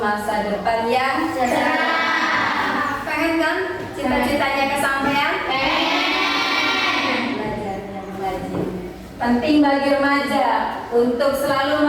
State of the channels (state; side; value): identical; both; correlation 1.00